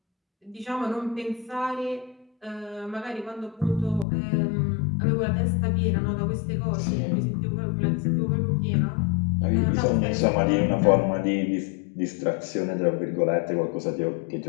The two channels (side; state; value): right; drops out; at 4.0 s